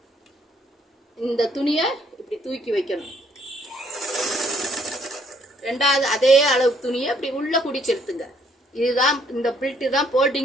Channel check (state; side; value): normal; both; correlation 0.66